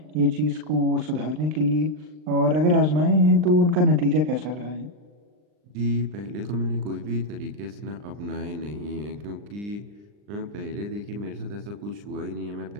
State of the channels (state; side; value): late; left; 39 ms